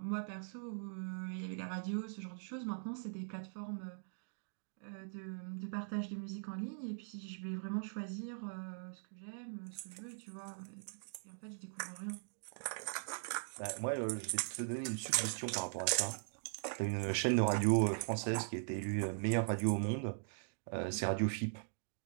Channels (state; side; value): silent; left; digital silence